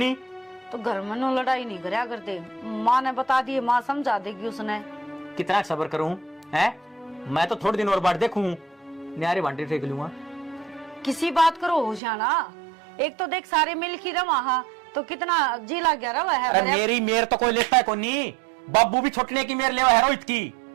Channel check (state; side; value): drops out; left; at 12.0 s